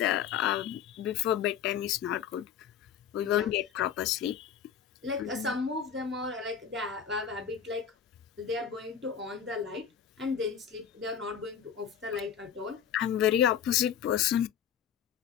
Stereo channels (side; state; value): right; quieter; 8.3 dB